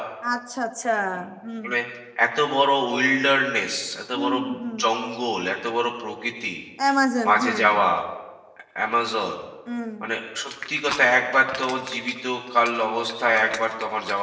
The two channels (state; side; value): identical; both; correlation 1.00